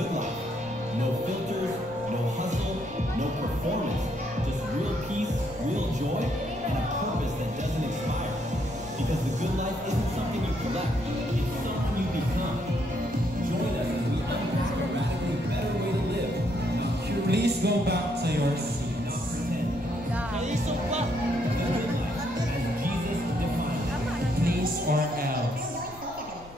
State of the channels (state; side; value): noise; left; rumble, 20 dB below the sound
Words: life. No filters, no hustle, no performance. Just real peace, real joy, and a purpose that doesn't expire. Because the good life isn't something you collect, it's something you become. Join us as we unpack a radically better way to live. Please go back to your seats. Please or else.